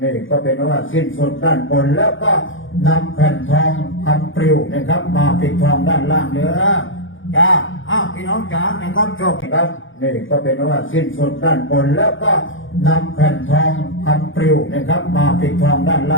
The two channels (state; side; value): late; right; 0.57 ms